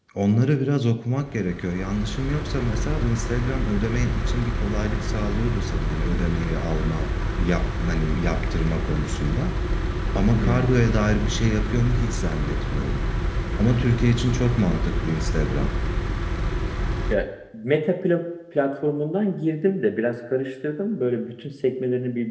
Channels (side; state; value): both; identical; correlation 1.00